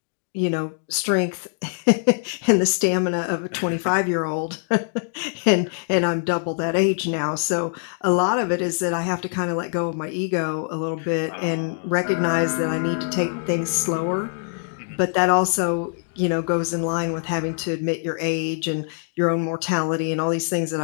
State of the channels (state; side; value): silent; right; digital silence